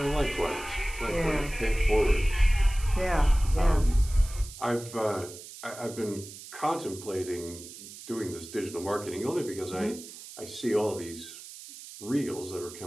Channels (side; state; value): right; noise; hiss, 15 dB below the sound